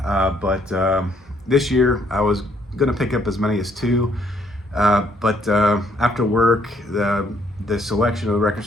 but this year I was going to pick up as many as 2, but after work, the selection of the record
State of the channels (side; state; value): both; normal; correlation 0.68